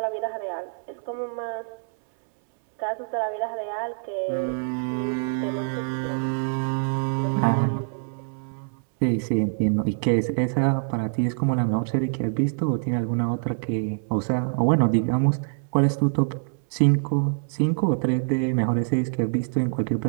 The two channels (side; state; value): left; silent; 62 dB below the other